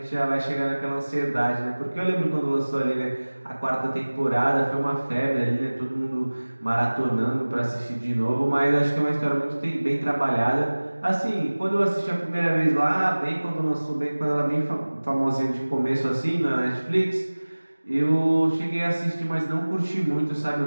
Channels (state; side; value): inverted; both; correlation -1.00